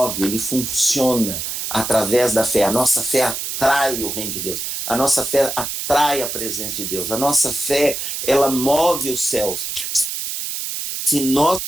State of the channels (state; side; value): noise; right; hiss, 4 dB below the sound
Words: ele funciona através da fé. A nossa fé atrai o reino de Deus. A nossa fé atrai a presença de Deus. A nossa fé, ela move os céus. Se nós